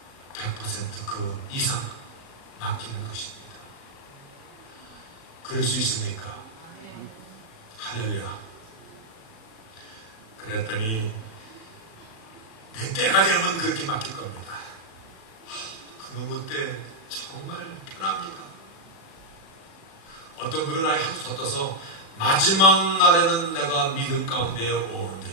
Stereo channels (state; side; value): late; right; 36 ms